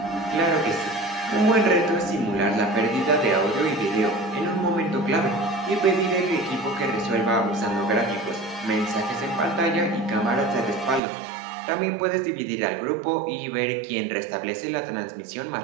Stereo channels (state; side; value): drops out; left; at 11.0 s